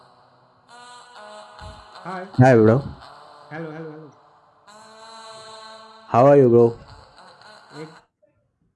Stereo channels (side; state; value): both; identical; correlation 1.00